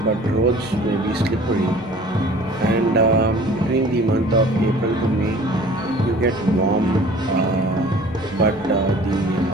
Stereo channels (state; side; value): normal; both; correlation 0.48